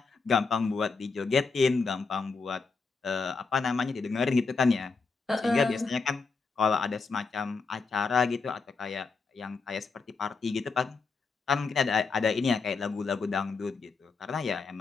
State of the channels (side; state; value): right; quieter; 4.6 dB